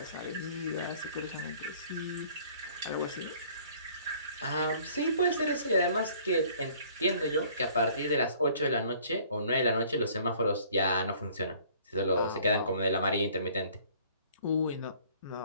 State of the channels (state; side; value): inverted; both; correlation -0.55